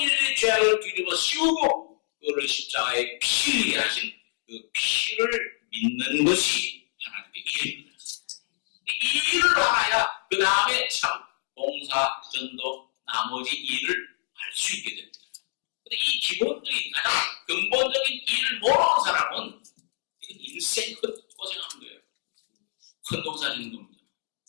인류의 죄악을 뒤집어 씌우고 그를 십자가에 피 흘리게 하신 그 피를 믿는 것이 하나님의 일입니다. 이 일을 알아야 그 다음에 참 봉사, 전도, 나머지 일을 할 수 있게 됩니다. 근데 이 기본적인 가장 근본적인 일을 모르는 사람은 이건 인생 고생하는 거예요. 큰 농사 짓는 겁니다.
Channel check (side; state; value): right; silent; digital silence